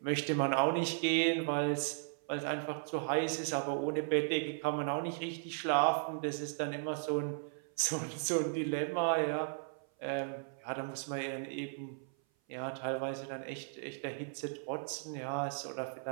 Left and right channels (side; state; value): left; silent; 54 dB below the other